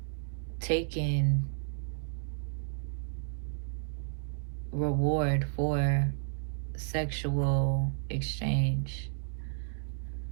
taking reward for sexual exchange.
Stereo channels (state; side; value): silent; left; 56 dB below the other